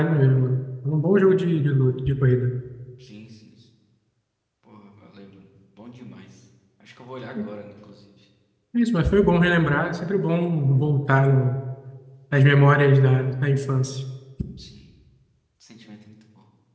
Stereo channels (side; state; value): both; identical; correlation 1.00